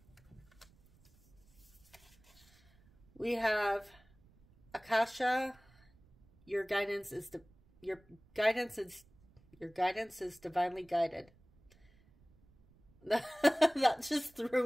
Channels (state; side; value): noise; right; rumble, 29 dB below the sound